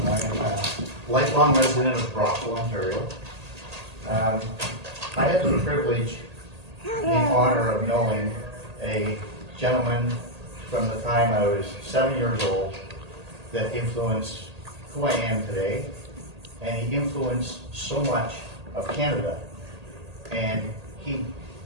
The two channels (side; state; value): left; late; 1.8 ms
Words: am a lifelong resident of Brockville, Ontario. I had the privilege and the honor of knowing a gentleman from the time I was 7 years old that influenced who I am today, and he influenced so much of Canada. And he